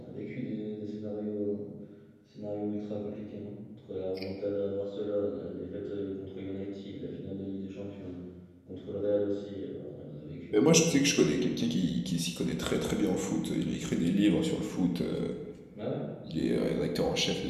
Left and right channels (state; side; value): identical; both; correlation 1.00